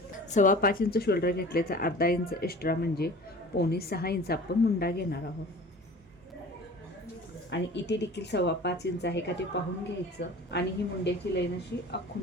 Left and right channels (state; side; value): normal; both; correlation 0.42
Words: 5.25 इंच शोल्डर घेतले तर अर्धा इंच एक्स्ट्रा म्हणजे 5.25 इंच आपण मुंडा घेणार आहोत. आणि इथे देखील 5.25 इंच आहे का ते पाहून घ्यायचं आणि ही मुंड्याची लाईन अशी